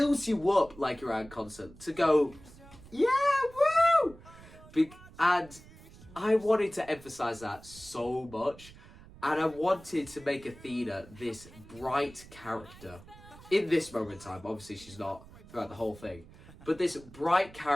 you up like you're at a concert to go, yeah, woo! And I wanted to emphasize that so much, and I wanted to make Athena this bright character in this moment in time. Obviously, she's not throughout the whole thing, but this bright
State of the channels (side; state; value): right; noise; rumble, 20 dB below the sound